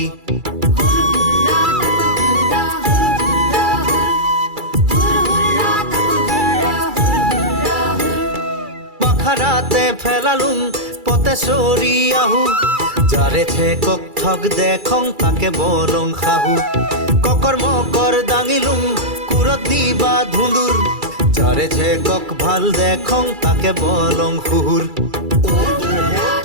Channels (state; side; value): late; left; 2.3 ms